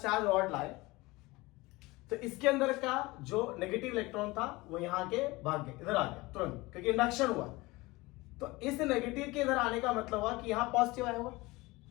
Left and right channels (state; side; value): quieter; right; 21.8 dB